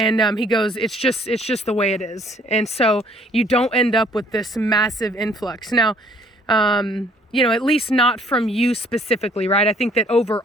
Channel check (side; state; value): both; normal; correlation 0.60